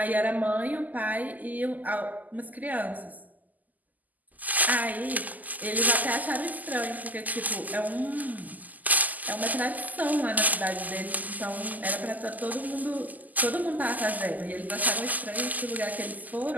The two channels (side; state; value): left; late; 0.081 ms